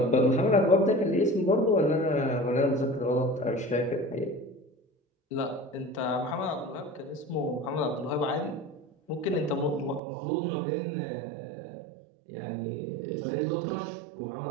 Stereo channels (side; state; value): left; drops out; at 10.0 s